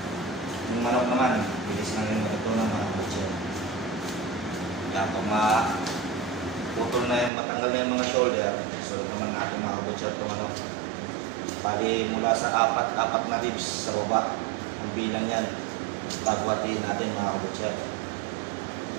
Yung manok naman, bilis na rin matutunan mga butcher. Kaya kung putol na yung matanggal na yung mga shoulder, so naman natin mga butcher ito manok. Bali mula sa apat na ribs sa baba, ang bilang yan, pagwatiin natin mga butcher.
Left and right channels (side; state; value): left; drops out; at 7.3 s